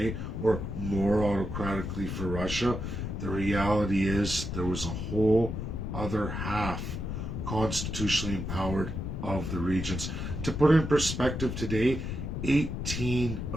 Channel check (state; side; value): noise; left; rumble, 4 dB below the sound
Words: or more autocratically for Russia. The reality is there was a whole other half constitutionally empowered of the regions. To put it in perspective today, 18